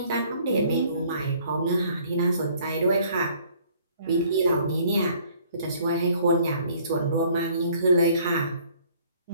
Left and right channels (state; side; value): inverted; both; correlation -0.58